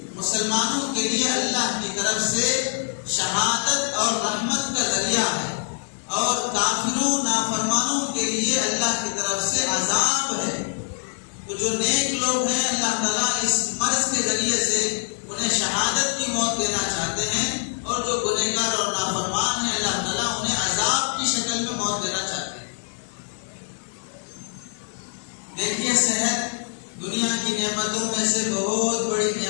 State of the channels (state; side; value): silent; right; 62 dB below the other